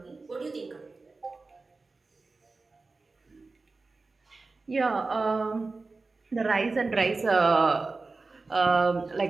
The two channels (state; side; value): quieter; left; 3.7 dB